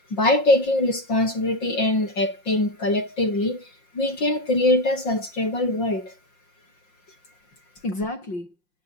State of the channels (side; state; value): right; late; 5.6 ms